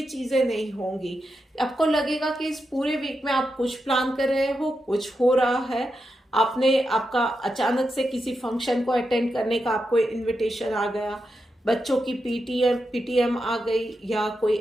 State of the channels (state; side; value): normal; both; correlation 0.87